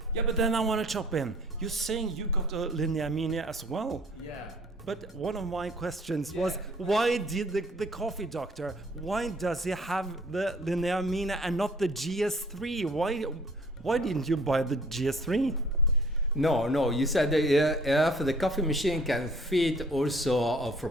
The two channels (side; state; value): both; normal; correlation 0.55